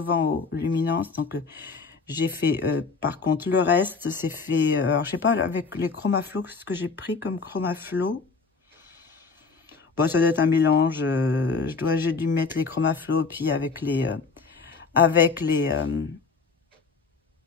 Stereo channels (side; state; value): right; quieter; 4.7 dB